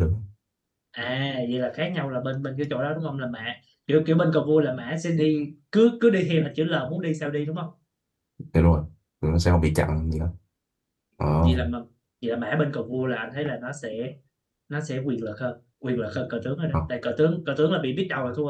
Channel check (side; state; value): both; identical; correlation 1.00